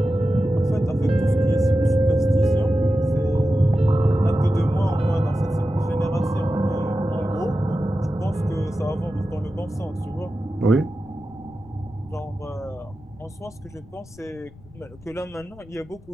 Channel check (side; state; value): left; noise; rumble, 22 dB below the sound